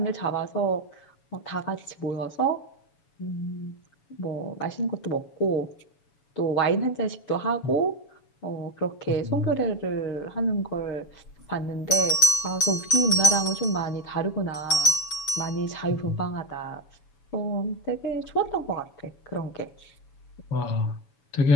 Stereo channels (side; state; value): right; late; 7.0 ms